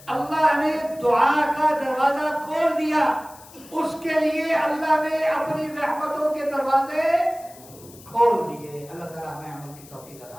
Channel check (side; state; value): left; noise; hiss, 21 dB below the sound